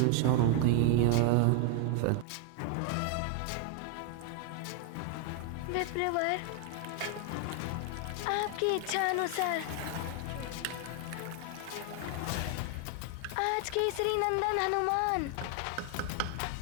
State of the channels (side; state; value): both; different; correlation 0.00